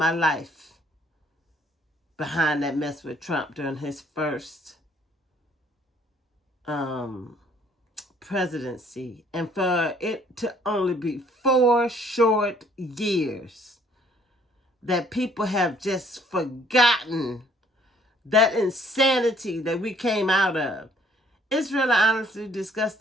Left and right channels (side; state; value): both; normal; correlation 0.61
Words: life behind that mess with Trump during his first presidency. And for it to only be 4 short years that people have just forgotten that insanity that we came out of. It's really honestly